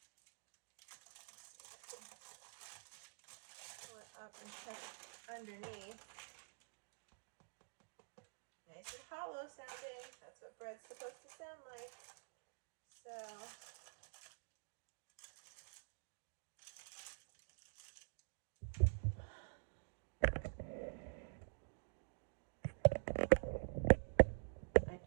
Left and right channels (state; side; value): silent; left; digital silence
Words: Pull it up and check underneath. Nice and hollow sounding. That's what bread's supposed to sound like. So I